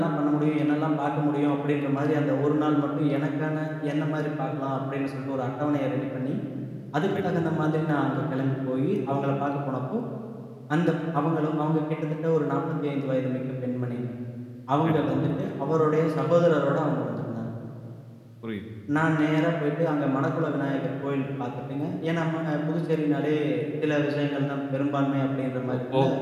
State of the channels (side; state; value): both; identical; correlation 1.00